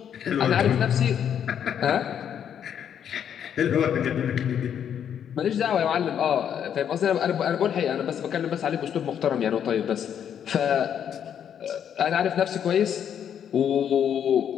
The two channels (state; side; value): quieter; right; 8.9 dB